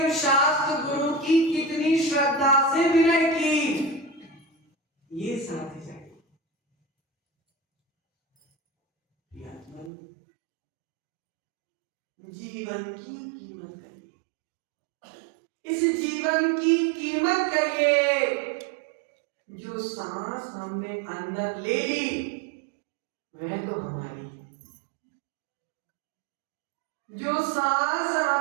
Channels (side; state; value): left; drops out; at 9.9 s